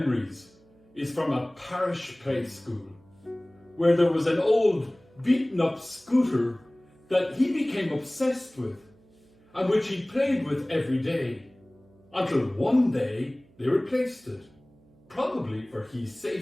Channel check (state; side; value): noise; right; hum, 29 dB below the sound